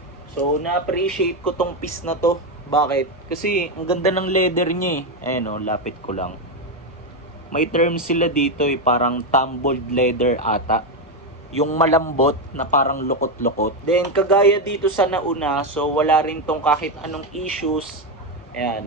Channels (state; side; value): normal; both; correlation 0.08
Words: So, na-appreciate ko tong piece na to. Bakit? Kasi, ang ganda ng leather niya eh. Ayan o, lapit ko lang. May term sila dito eh, parang tumbled leather ata. Yung malambot na parang lukot-lukot. Then, kagaya dito sa nauna, so wala rin tong kahit anong issues.